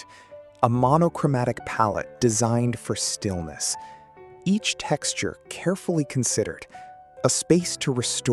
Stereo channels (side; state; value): both; identical; correlation 1.00